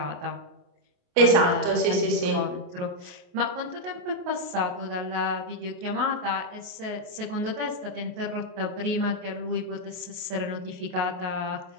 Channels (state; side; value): late; left; 28 ms